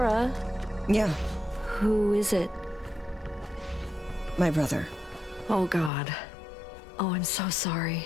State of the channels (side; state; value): right; drops out; at 5.9 s